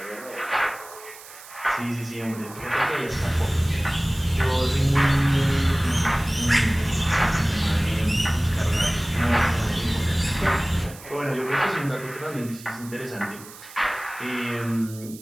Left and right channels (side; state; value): right; noise; hiss, 18 dB below the sound